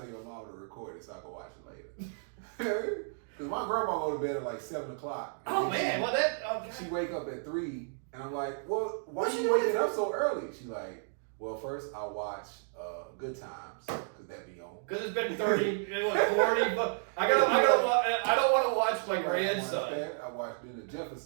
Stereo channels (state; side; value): silent; left; digital silence